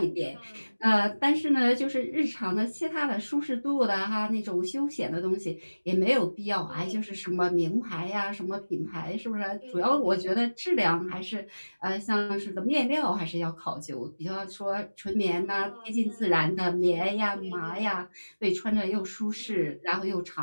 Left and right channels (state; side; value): inverted; both; correlation -1.00